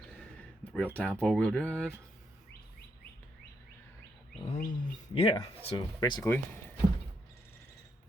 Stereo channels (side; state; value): both; normal; correlation 0.78